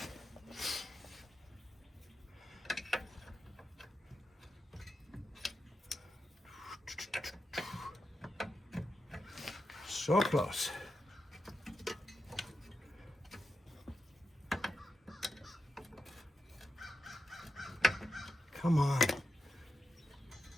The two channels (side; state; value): both; normal; correlation 0.88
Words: So close. Come on.